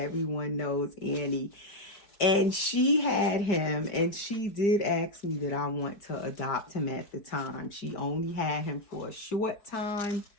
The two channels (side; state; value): right; late; 4.7 ms